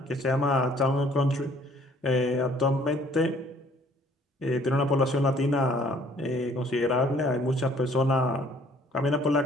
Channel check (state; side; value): normal; both; correlation 0.59